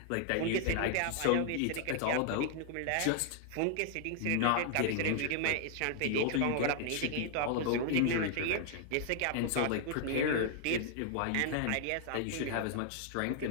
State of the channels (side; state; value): both; different; correlation 0.00